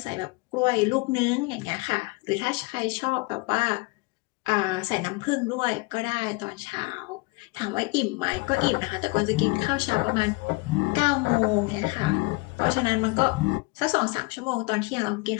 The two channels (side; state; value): right; quieter; 26.0 dB